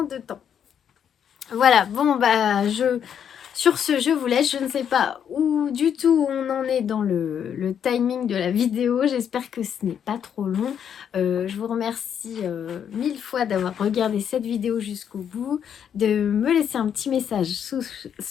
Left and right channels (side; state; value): right; quieter; 8.4 dB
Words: de temps. Voilà, bon, sur ce, je vous laisse. Je ne sais pas où du tout on en est dans le timing de la vidéo. J'espère que ce n'est pas trop long. Je vous remercie 1000 fois d'avoir regardé cette vidéo jusqu'au bout, de me laisser un petit message